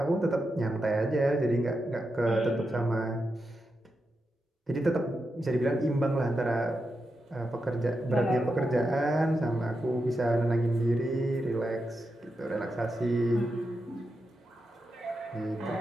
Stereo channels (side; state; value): both; normal; correlation 0.87